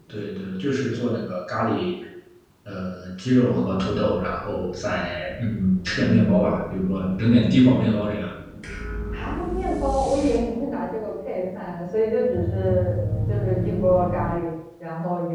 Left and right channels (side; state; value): both; identical; correlation 1.00